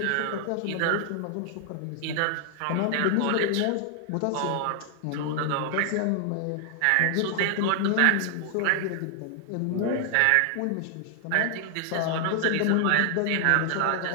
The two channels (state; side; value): different; both; correlation 0.00